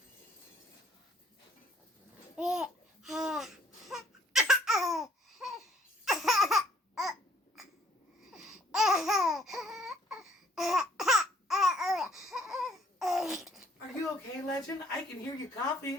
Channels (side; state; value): both; normal; correlation 0.62